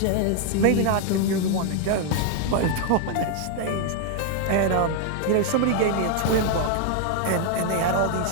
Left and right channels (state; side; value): different; both; correlation 0.00